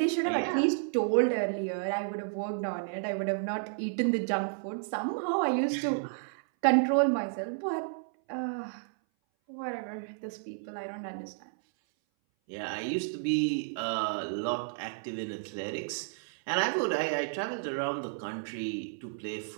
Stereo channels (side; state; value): left; silent; 57 dB below the other